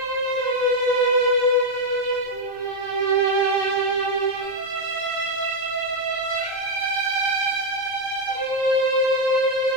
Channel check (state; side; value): late; right; 19 ms